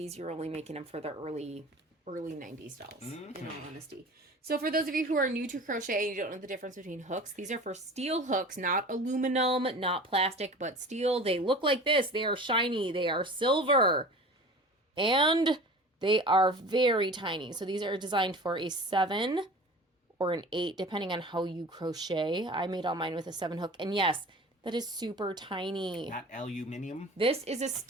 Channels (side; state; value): both; normal; correlation 0.39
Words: you're only making them for the early 90s dolls, in all honesty. So for those of you who are new to crochet and you don't know the difference between hooks, these are for steel hooks, not aluminum, not plastic, but steel. They look like this. They are shiny. They are silver. And they are very tiny. So these are designed for a 7 or an 8, depending on how you crochet. I made all mine with a 7 hook. And yes, that is super tiny. Not aluminium? This is a